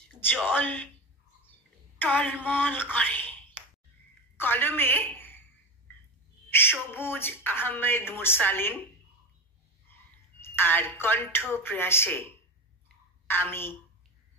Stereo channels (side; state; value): both; normal; correlation 0.23